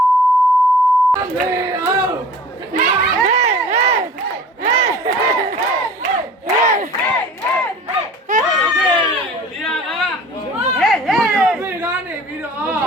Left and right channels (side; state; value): both; normal; correlation 0.44